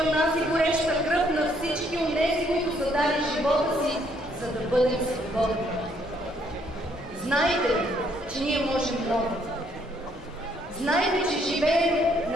нас и гореща кръв на всички онези, които са дали живота си, за да бъдем свободни. Знайте, че ние можем много. Знайте, че живеем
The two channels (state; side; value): normal; both; correlation 0.68